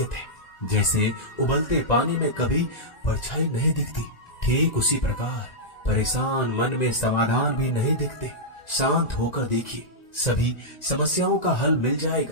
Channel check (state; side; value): late; right; 1.9 ms